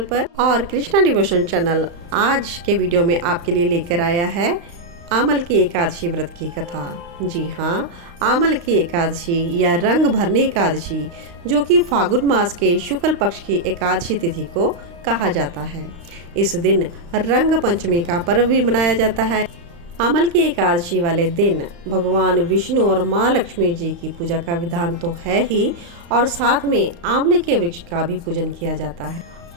पर। और कृष्णा डिवोशन चैनल आज के वीडियो में आपके लिए लेकर आया है आमल की एकादशी व्रत की कथा। जी हाँ, आमल की एकादशी या रंग भरने एकादशी, जो कि फागुन मास के शुक्ल पक्ष की एकादशी तिथि को कहा जाता है। इस दिन रंग पंचमी का पर्व भी मनाया जाता है। आमल की एकादशी वाले दिन भगवान विष्णु और माँ लक्ष्मी जी की पूजा का विधान तो है ही, और साथ में आंवले के वृक्ष का भी पूजन किया जाता है।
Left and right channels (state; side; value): late; left; 35 ms